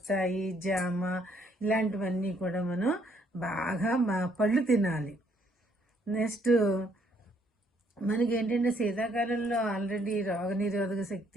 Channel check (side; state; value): both; normal; correlation 0.68